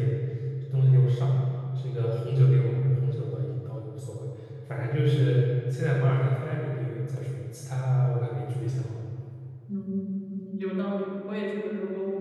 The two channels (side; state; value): both; identical; correlation 1.00